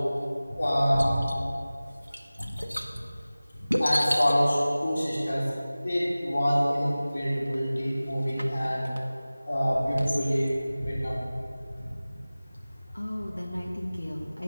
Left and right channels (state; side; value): inverted; both; correlation -0.98